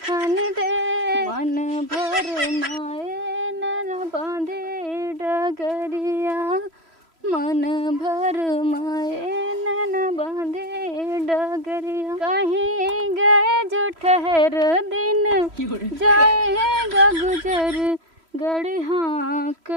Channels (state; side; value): late; left; 3.0 ms